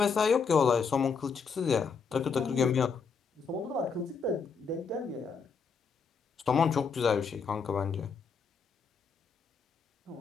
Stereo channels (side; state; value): right; quieter; 5.5 dB